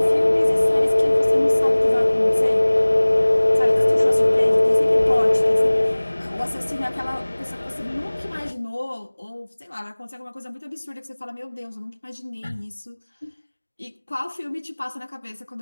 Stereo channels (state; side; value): inverted; both; correlation -1.00